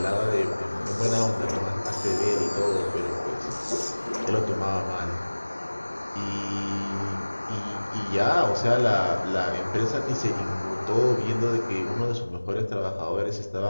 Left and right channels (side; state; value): both; inverted; correlation -1.00